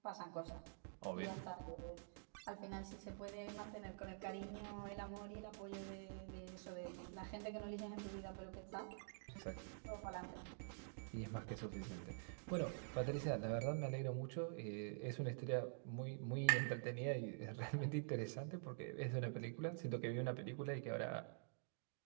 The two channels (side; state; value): left; silent; digital silence